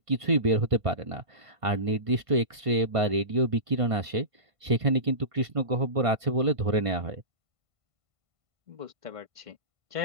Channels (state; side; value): late; left; 1.5 ms